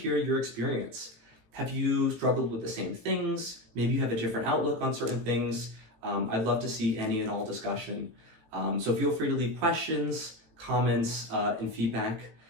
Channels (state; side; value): late; left; 18 ms